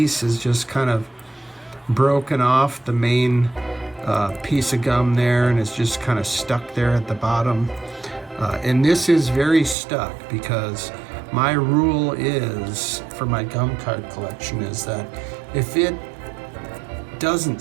is just kind of broken off the main piece of gum there, and it's just kind of stuck there at the bottom. And this is very stuck, because my rule is, for my gum card collection, is that if it doesn't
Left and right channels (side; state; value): left; drops out; at 9.8 s